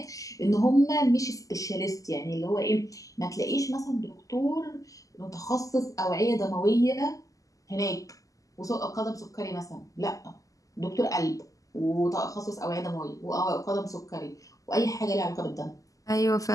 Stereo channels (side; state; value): right; late; 0.17 ms